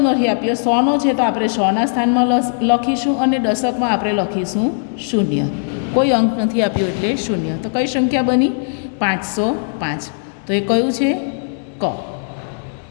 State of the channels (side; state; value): right; silent; 67 dB below the other